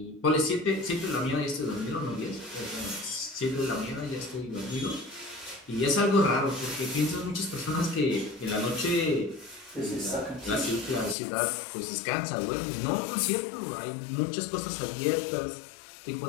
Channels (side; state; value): right; drops out; at 11.2 s